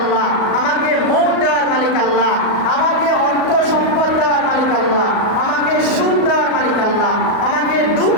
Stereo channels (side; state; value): right; late; 38 ms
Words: আমাকে মৌত দেওয়ার মালিক আল্লাহ, আমাকে অর্থ সম্পদ দেওয়ার মালিক আল্লাহ, আমাকে সুখ দেওয়ার মালিক আল্লাহ, আমাকে দুঃখ